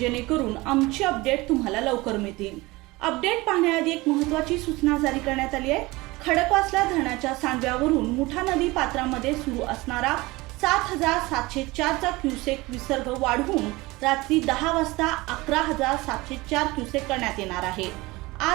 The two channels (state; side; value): quieter; left; 21.6 dB